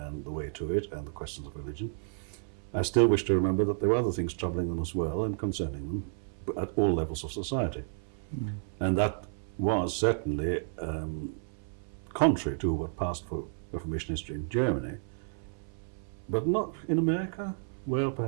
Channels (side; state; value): left; silent; 57 dB below the other